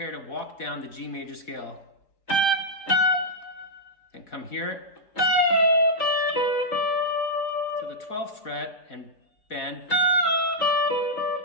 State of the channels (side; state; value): right; late; 3.9 ms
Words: to walk down the G major scale. Then come here to the 12th fret and bend.